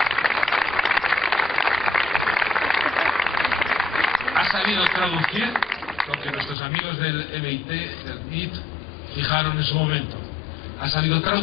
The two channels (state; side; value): drops out; right; at 6.6 s